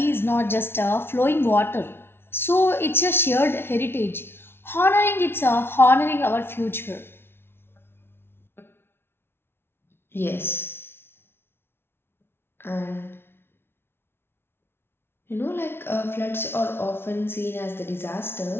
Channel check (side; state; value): right; late; 0.11 ms